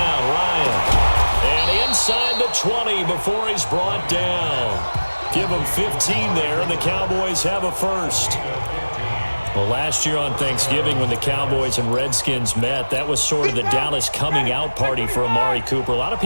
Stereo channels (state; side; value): inverted; both; correlation -1.00